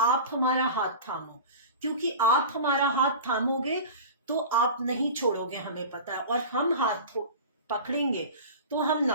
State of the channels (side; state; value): both; inverted; correlation -0.33